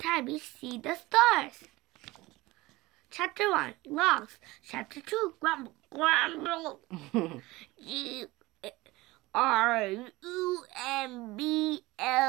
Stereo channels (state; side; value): quieter; left; 20.5 dB